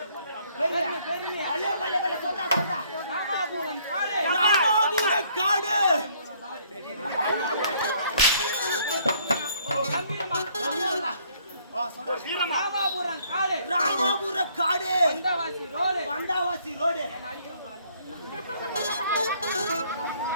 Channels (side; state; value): both; inverted; correlation -0.64